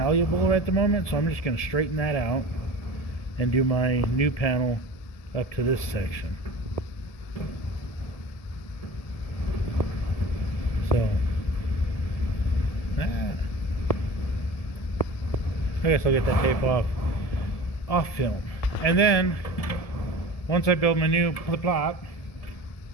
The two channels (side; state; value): right; late; 1.7 ms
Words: at the moment, so I'm just going to straighten that out and do my new panel up to this section. So I guess I'll get that tape off film, and then once I build my new plot,